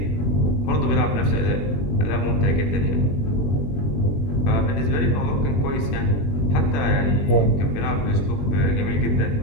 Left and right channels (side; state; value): right; late; 21 ms